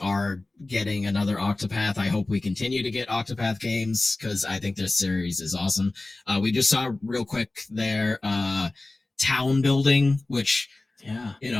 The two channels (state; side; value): quieter; right; 3.0 dB